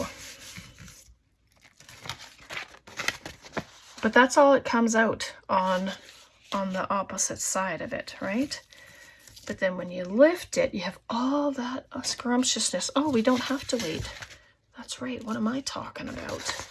but that's all it comes out on the opposite side of it, right? But then when you lift it, you have all that scrumptiousness. Oh, we don't have to wait. That's right. What am I talking about?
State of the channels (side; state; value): both; identical; correlation 1.00